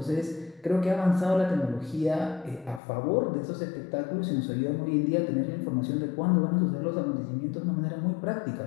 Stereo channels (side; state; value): right; drops out; at 2.8 s